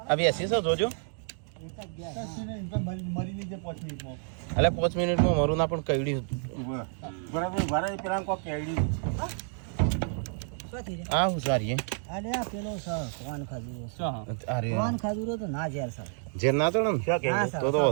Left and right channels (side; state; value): left; silent; 58 dB below the other